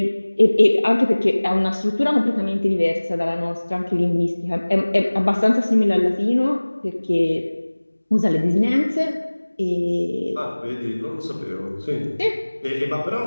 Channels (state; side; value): inverted; both; correlation -1.00